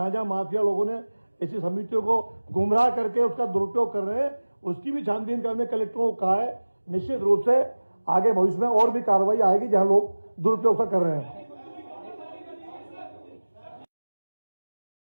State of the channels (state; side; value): inverted; both; correlation -1.00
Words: जहां माफिया लोगों ने ऐसी समितियों को गुमराह करके उसका दुरुपयोग कर रहे हैं, उसकी भी छानबीन करने कलेक्टरों को कहा है। निश्चित रूप से आगे भविष्य में और भी कार्रवाई आएगी जहां लोग दुरुपयोग कर रहे हैं।